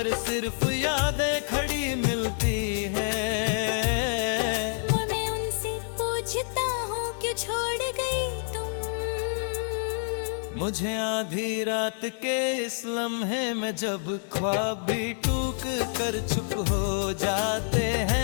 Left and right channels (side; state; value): right; silent; digital silence